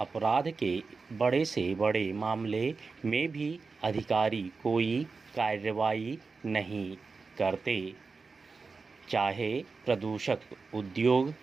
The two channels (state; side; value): quieter; left; 4.4 dB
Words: के बड़े से बड़े मामले में भी अधिकारी कोई कार्रवाई नहीं करते, चाहे प्रदूषक उद्योग